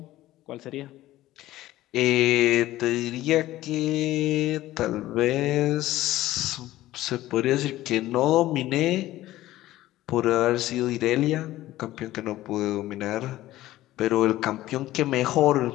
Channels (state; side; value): quieter; right; 15.6 dB